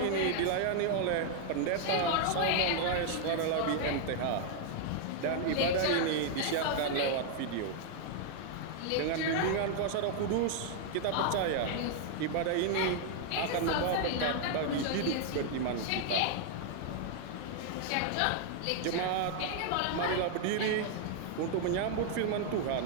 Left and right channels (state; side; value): different; both; correlation 0.00